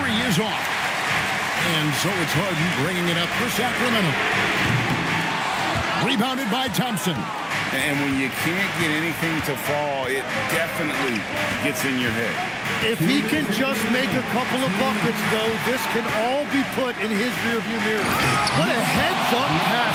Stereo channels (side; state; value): both; identical; correlation 1.00